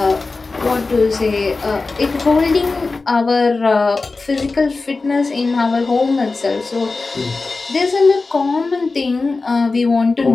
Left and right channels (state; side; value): quieter; right; 3.8 dB